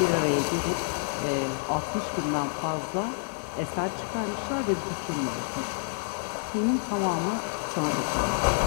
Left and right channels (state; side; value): silent; right; 59 dB below the other